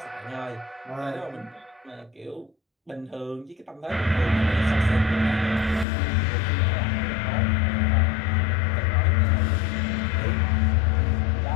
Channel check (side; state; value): right; drops out; at 5.9 s